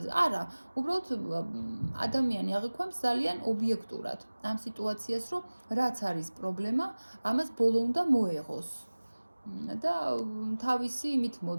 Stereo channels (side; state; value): both; inverted; correlation -1.00